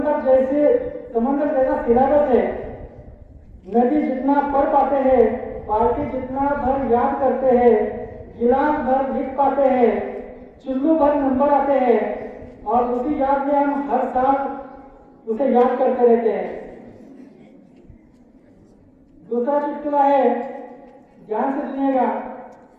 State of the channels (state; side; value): identical; both; correlation 1.00